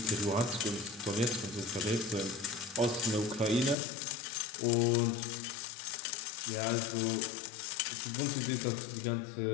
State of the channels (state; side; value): drops out; right; at 3.8 s